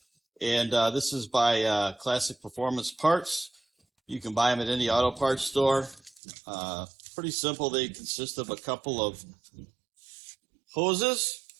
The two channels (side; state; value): left; drops out; at 6.2 s